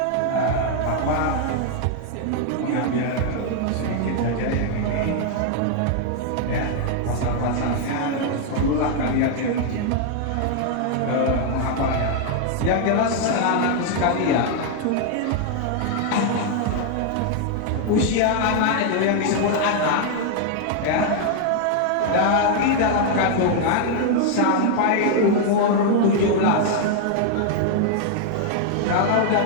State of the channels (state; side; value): different; both; correlation 0.00